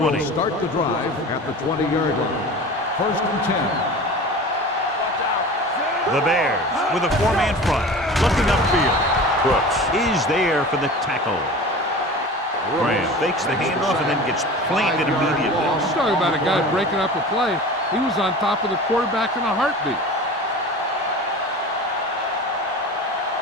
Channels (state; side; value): normal; both; correlation 0.36